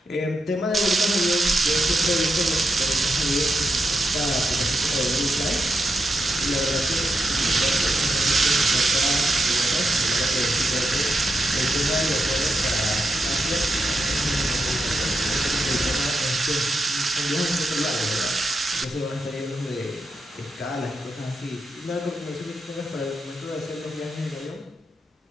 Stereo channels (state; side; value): normal; both; correlation 0.86